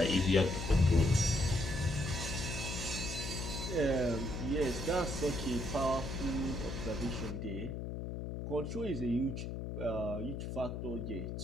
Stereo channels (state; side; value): noise; left; hum, 5 dB below the sound